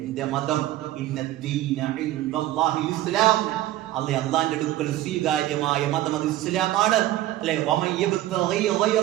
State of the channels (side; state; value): left; quieter; 14.7 dB